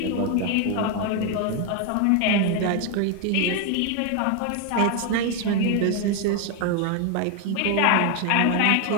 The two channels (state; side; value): different; both; correlation 0.01